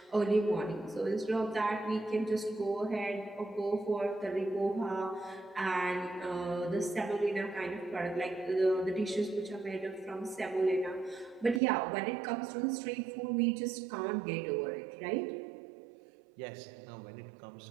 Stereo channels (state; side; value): drops out; left; at 11.6 s